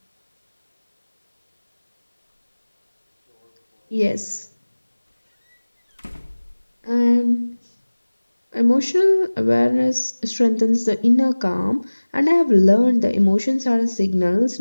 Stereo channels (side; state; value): both; inverted; correlation -1.00